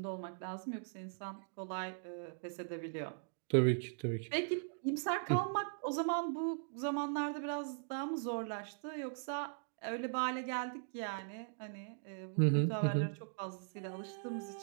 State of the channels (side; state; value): left; silent; digital silence